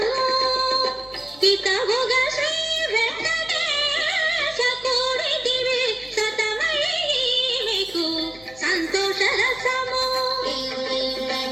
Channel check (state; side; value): noise; left; hum, 23 dB below the sound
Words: హితముగ శ్రీ వెంకటేశ కోరితివి సతమై మీకు సంతోష రసము